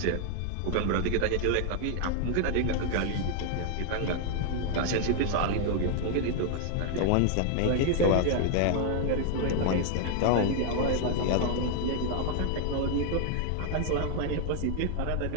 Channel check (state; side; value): different; both; correlation 0.00